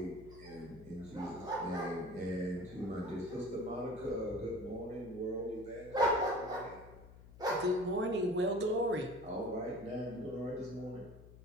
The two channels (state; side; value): noise; left; hum, 18 dB below the sound